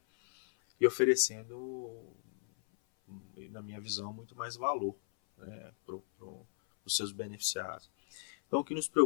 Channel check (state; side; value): silent; right; 54 dB below the other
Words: E oferecendo, na minha visão, muito mais valor para os seus beneficiários. Então, o que nos